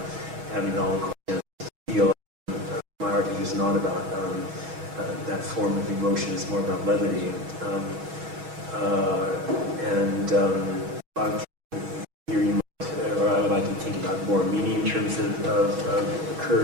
having it all in steel. My artwork is not about that form of emotion. It's more about levity. Here you might, or I would like to think about more meaning in terms of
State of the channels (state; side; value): late; left; 6.2 ms